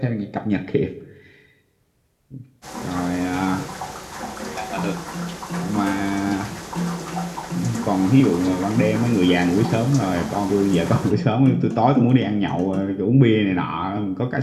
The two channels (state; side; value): identical; both; correlation 1.00